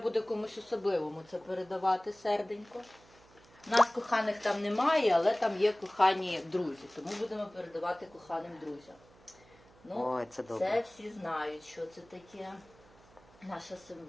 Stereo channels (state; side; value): noise; right; hum, 26 dB below the sound